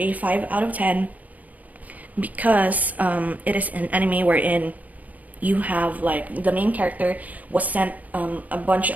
5 out of 10 because it is an anime wherein you have like the main character was sent a bunch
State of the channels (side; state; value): left; late; 0.075 ms